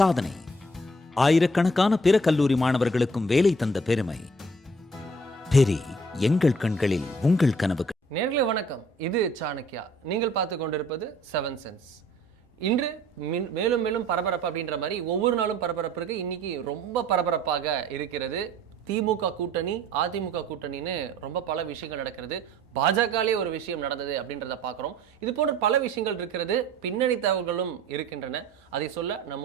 ஆயிரக்கணக்கான பிற கல்லூரி மாணவர்களுக்கும் வேலை தந்த பெருமை. பெரி, எங்கள் கண்களில் உங்கள் கனவுகள். நேர்களே வணக்கம், இது சாணக்கியா. நீங்கள் பார்த்து கொண்டிருப்பது 7 சென்ஸ். இன்று மேலும் மேலும் பரபரப்பு அப்படின்ற மாதிரி ஒவ்வொரு நாளும் பரபரப்பு இருக்கு. இன்னைக்கு ரொம்ப பரபரப்பாக இருக்கிறது. திமுக கூட்டணி, அதிமுக கூட்டணின்னு ரொம்ப பல விஷயங்கள் நடக்கிறது. பாஜகலே ஒரு விஷயம் நடந்தது அப்படின்றத பார்க்குறோம். இது போன்ற பல விஷயங்கள் இருக்கிறது. பின்னணி தகவல்களும் இருக்கின்றன. அதை சொல்ல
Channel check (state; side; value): normal; both; correlation 0.55